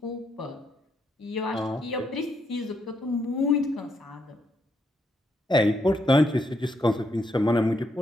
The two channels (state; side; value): normal; both; correlation 0.77